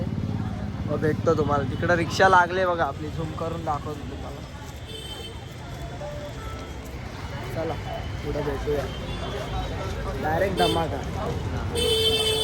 मग भेटतो तुम्हाला. तिकडं रिक्षा लागले बघा आपली. झूम करून दाखवतो तुम्हाला. चला पुढे भेटूया. डायरेक्ट धमाका.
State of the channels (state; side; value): identical; both; correlation 1.00